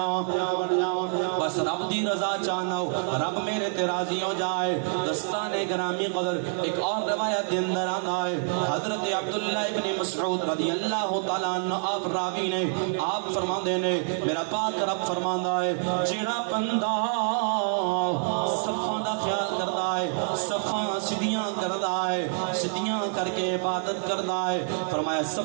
بس رب دی رضا چاہنا ہو رب میرے تے راضی ہو جائے دستان گرامی قدر ایک اور روایت دے اندر آنا ہے حضرت عبداللہ ابن مسعود رضی اللہ تعالیٰ عنہ آپ راوی نے آپ فرما دینے میرا پاک رب فرماندہ ہے جیڑا بندہ صفان دا خیال کردہ ہے صفان سدیاں کردہ ہے سدیاں کر کے عبادت کردہ ہے فرمایا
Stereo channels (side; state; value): left; silent; 59 dB below the other